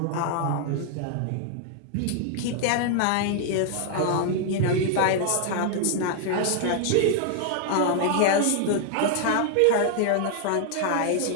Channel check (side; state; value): both; different; correlation 0.00